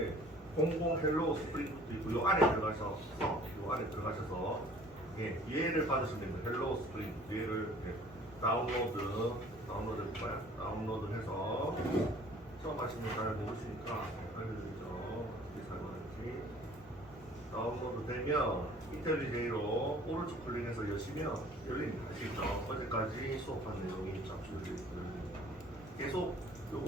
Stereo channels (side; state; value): both; normal; correlation 0.52